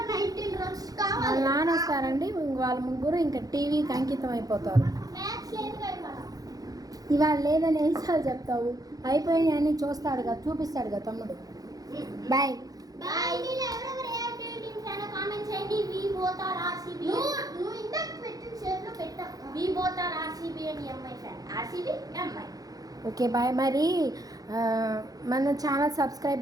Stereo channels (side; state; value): left; late; 0.18 ms